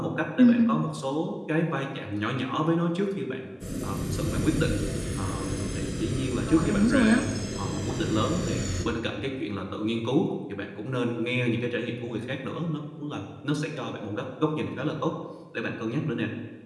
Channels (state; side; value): identical; both; correlation 1.00